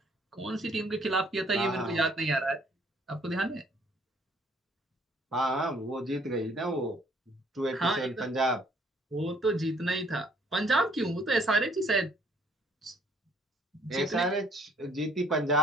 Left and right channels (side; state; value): both; normal; correlation 0.62